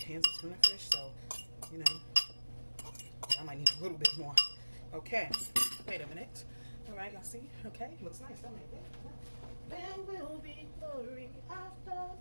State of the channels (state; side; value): inverted; both; correlation -1.00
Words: of tuna fish, so, I might need a little bit more. Okay, wait a minute. All right, y'all see? Okay, looks nice, don't it? There will be glory after